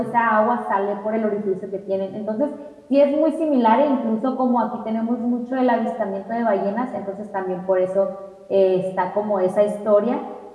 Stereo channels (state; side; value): identical; both; correlation 1.00